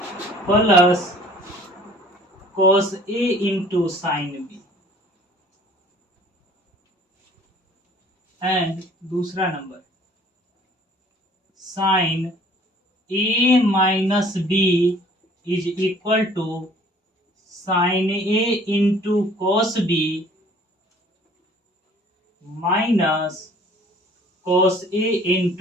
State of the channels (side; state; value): both; normal; correlation 0.53